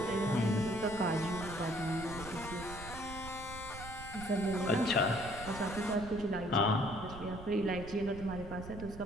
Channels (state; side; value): noise; right; rumble, 12 dB below the sound